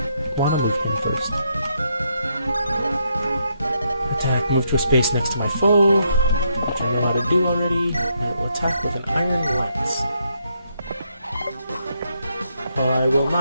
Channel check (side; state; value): both; inverted; correlation -0.77